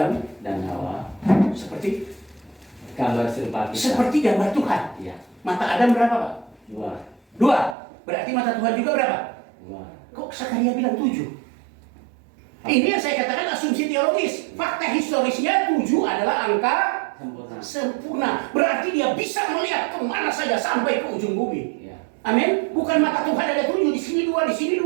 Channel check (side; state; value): left; drops out; at 7.8 s